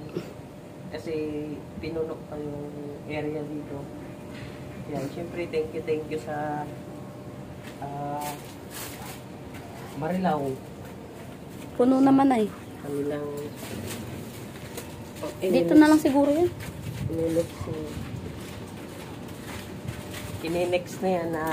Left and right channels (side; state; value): both; identical; correlation 1.00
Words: Kasi pinunok pa yung area dito. Yan, syempre thank you sa Marilao. Puno naman ay. Kanilang Dito na lang siguro yan. Ininex na yan